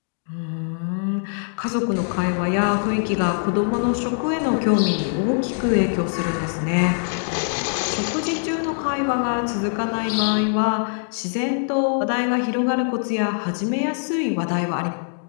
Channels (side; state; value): right; silent; digital silence